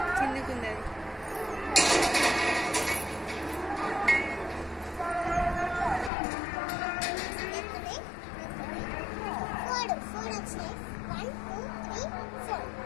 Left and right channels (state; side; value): drops out; right; at 6.1 s